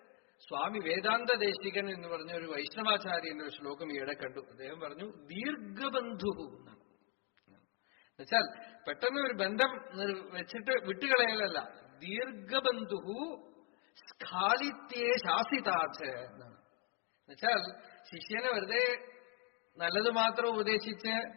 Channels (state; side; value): quieter; right; 34.8 dB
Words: സ്വാമി വേദാന്ത ദേശികൻ എന്ന് പറഞ്ഞ ഒരു വൈഷ്ണവാചാര്യന്റെ ഒരു ശ്ലോകം ഈയിടെ കണ്ടു. അദ്ദേഹം പറഞ്ഞു ദീർഘബന്ധു എന്നാണ്. എന്നുവെച്ചാൽ പെട്ടെന്ന് ഒരു ബന്ധം വെച്ചിട്ട് വിട്ടുകളയലല്ല, ദീർഘബന്ധു സ്ഖാലിത്യേ ശാസിതാച്ച് എന്നാണ്. എന്നുവെച്ചാൽ ശിഷ്യനെ വെറുതെ നല്ലത് മാത്രം ഉപദേശിച്ച്